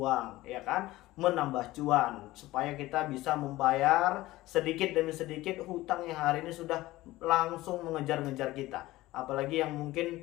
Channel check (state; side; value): quieter; right; 17.7 dB